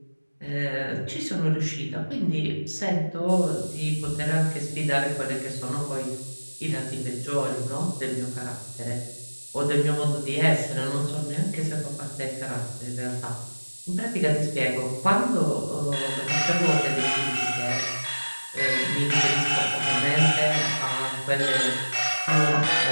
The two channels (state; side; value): inverted; both; correlation -1.00